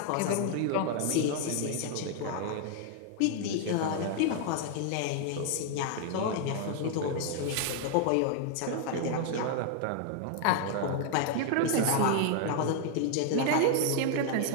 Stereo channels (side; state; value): both; different; correlation 0.00